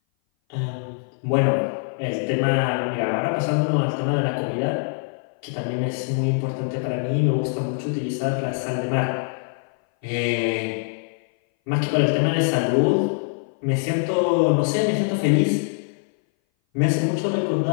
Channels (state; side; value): silent; right; 58 dB below the other